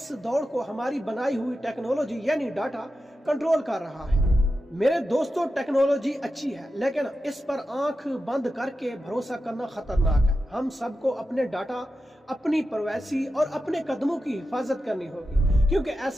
دوڑ کو ہماری بنائی ہوئی ٹیکنالوجی یعنی ڈاٹا کنٹرول کر رہا ہے۔ میرے دوستوں، ٹیکنالوجی اچھی ہے، لیکن اس پر آنکھ بند کر کے بھروسہ کرنا خطرناک ہے۔ ہم سب کو اپنے ڈاٹا، اپنی پرائیویسی اور اپنے قدموں کی حفاظت کرنی ہوگی، کیونکہ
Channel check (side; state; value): both; normal; correlation 0.91